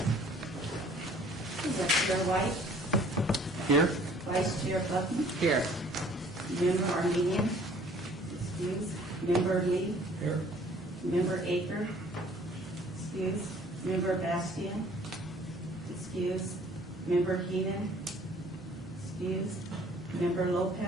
Chair White, Here? Vice Chair Buckman, Here. Member Armenian, excuse, Member Lee, Here. Member Aker, excuse, Member Bastian, excuse, Member Heenan, excuse, Member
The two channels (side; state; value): both; normal; correlation 0.55